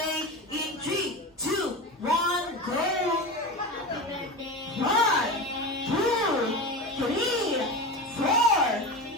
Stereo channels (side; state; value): both; normal; correlation 0.25